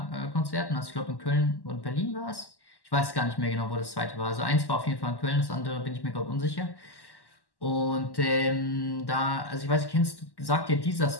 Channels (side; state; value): right; late; 1.1 ms